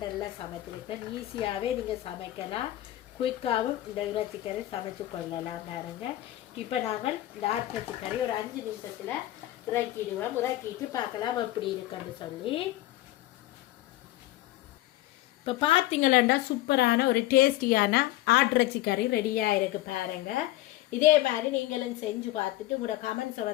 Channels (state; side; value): quieter; right; 15.7 dB